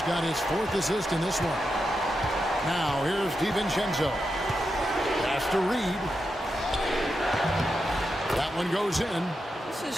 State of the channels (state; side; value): normal; both; correlation 0.87